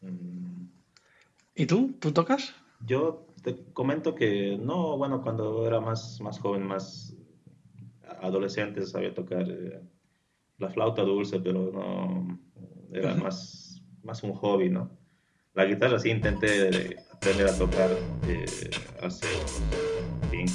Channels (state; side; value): identical; both; correlation 1.00